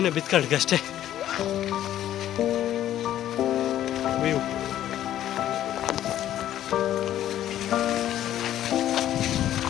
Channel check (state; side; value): quieter; right; 12.1 dB